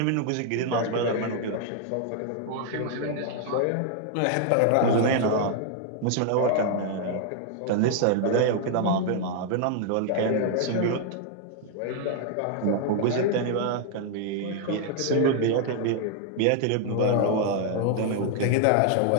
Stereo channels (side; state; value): both; different; correlation 0.00